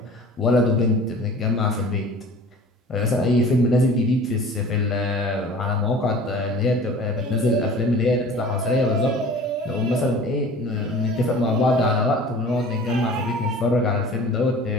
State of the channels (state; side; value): normal; both; correlation 0.43